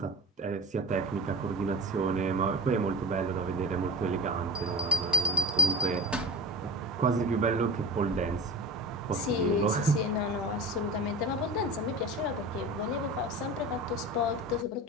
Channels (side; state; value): both; normal; correlation 0.35